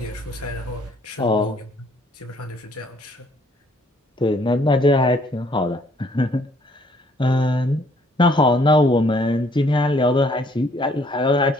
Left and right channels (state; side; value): normal; both; correlation 0.63